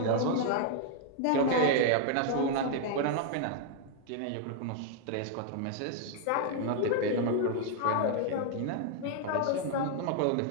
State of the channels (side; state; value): both; different; correlation 0.00